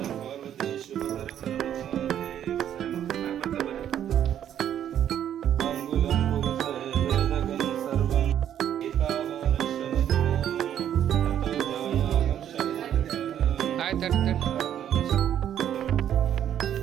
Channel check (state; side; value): quieter; left; 10.2 dB